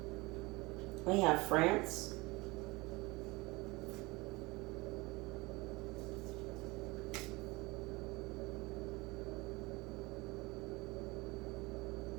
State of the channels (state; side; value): quieter; left; 23.6 dB